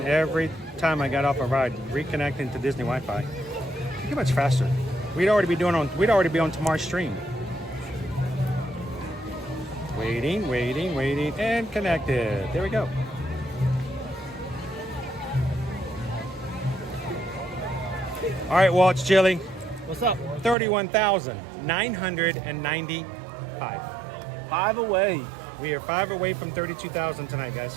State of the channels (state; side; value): drops out; left; at 20.6 s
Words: every time I got off a ride reconnecting to Disney Wi-Fi, it'd be much faster. We'd already be on tomorrow's stream. Waiting, and connected. There we go. All right, Walt, it's chilly. What's up? 31,995. 5 away. We are 5 away from 32,000 tonight, guys.